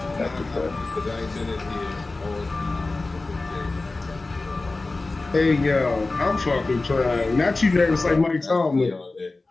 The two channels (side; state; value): right; quieter; 3.4 dB